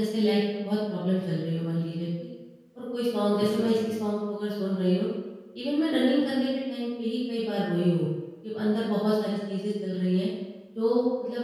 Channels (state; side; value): identical; both; correlation 1.00